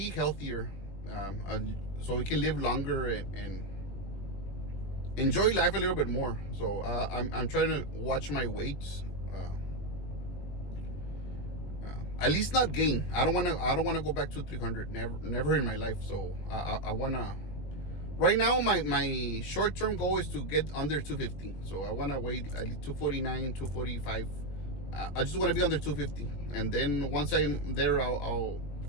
healthier, so we can live longer and enjoy life a little bit more. So I'm trying to watch my weight. At least not gain. I don't want to go back to 300. Never in my life. So I want to. Right now, my short term goal is to get under 250. So I want to weigh at least 249, 245. I just want to be under 250, and then once I'm there, I'll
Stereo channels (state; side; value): late; right; 21 ms